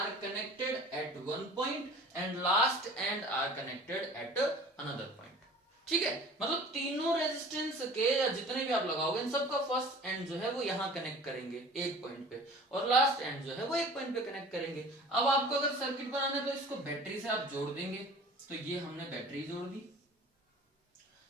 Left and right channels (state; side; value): normal; both; correlation 0.44